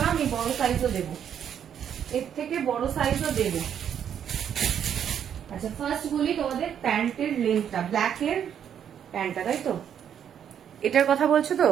না, আমি বড় সাইজও দেবো, এর থেকে বড় সাইজও দেবো। আচ্ছা, ফার্স্ট বলি তোমাদের প্যান্টের লেন্থটা, ব্ল্যাকের প্যান্টটা, তাই তো? এটার কথা বলছো তো?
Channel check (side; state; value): left; quieter; 8.9 dB